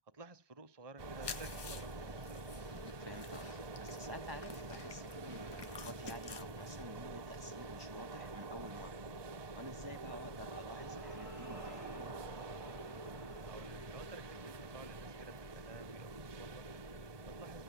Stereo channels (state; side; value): late; left; 1.2 ms